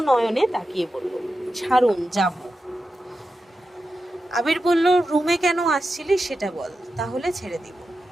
নয়নে তাকিয়ে বলল, ছাড়ুন, যাব। আবির বলল, রুমে কেন আসছিলি সেটা বল, তাহলে ছেড়ে দিব।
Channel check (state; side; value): normal; both; correlation 0.90